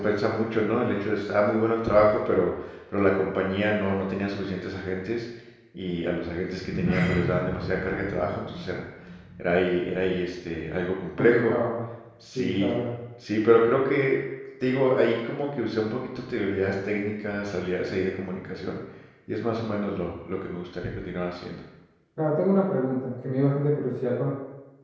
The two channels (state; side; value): identical; both; correlation 1.00